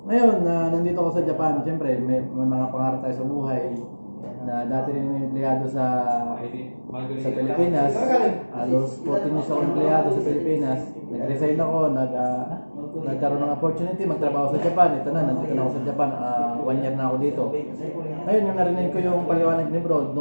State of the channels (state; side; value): inverted; both; correlation -1.00